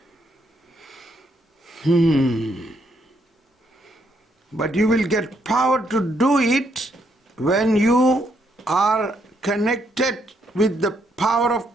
But you will get power to do it when you are connected with the power of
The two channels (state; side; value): normal; both; correlation 0.74